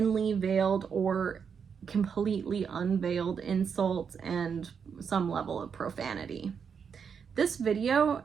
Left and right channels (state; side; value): quieter; left; 6.6 dB